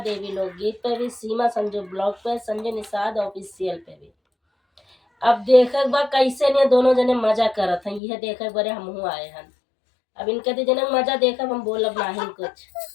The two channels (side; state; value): right; drops out; at 8.0 s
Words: लोकगीत पे भी, सीमा संजू ब्लॉग पे, संजय निषाद ऑफिशियल पे भी। अब देखे बा कैसे ने दोनों जने मजा करत हैं, यह देखे बरे हमहू आए हैं। अब इनके तो जने मजा देखब, हम बोलब नहीं कुछ।